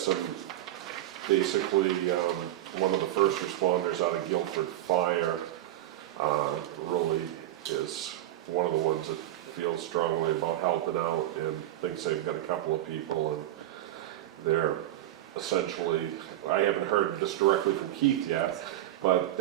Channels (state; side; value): quieter; left; 13.8 dB